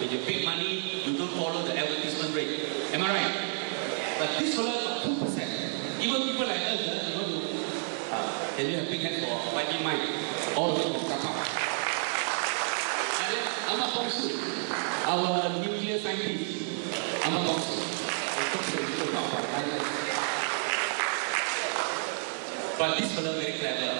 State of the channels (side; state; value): left; silent; 58 dB below the other